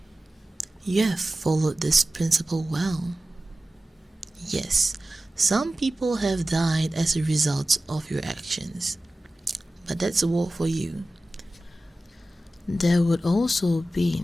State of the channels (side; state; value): both; normal; correlation 0.95